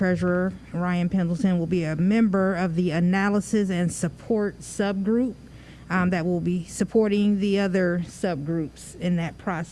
Ryan Pendleton, will be a member of the analysis and support subgroup that will be supporting the other subgroups in that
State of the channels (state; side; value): identical; both; correlation 1.00